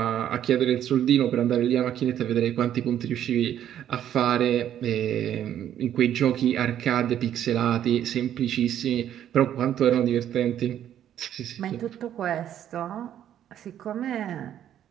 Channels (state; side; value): quieter; left; 10.7 dB